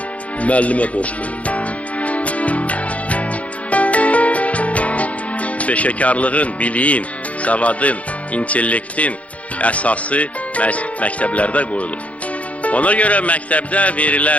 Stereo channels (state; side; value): late; right; 0.066 ms